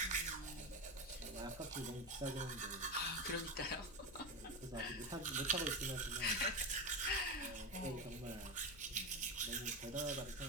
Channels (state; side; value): noise; left; rumble, 19 dB below the sound